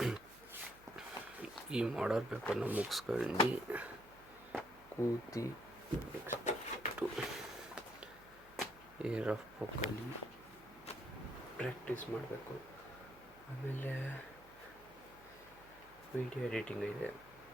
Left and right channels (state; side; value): noise; right; hum, 23 dB below the sound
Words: ಈ ಮಾಡಲ್ ಪೇಪರ್ನ ಮುಗಿಸ್ಕೊಂಡು ಕೂತಿ ನೆಕ್ಸ್ಟು ಈ ರಫ್ ಬುಕ್ಕಲ್ಲಿ ಪ್ರಾಕ್ಟೀಸ್ ಮಾಡಬೇಕು. ಆಮೇಲೆ ವೀಡಿಯೋ ಎಡಿಟಿಂಗ್ ಇದೆ,